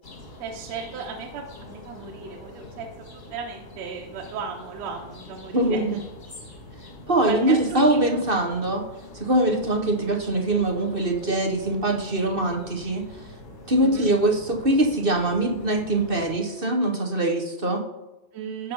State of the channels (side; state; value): left; late; 2.6 ms